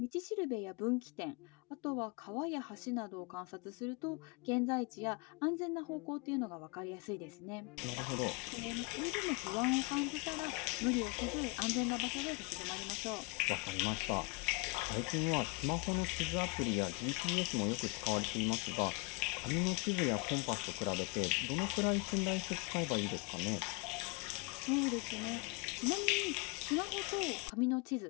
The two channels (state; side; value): quieter; right; 29.0 dB